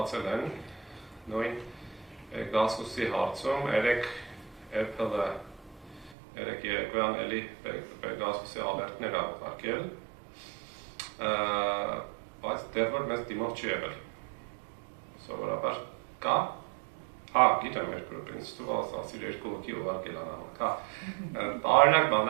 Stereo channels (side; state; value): left; drops out; at 6.2 s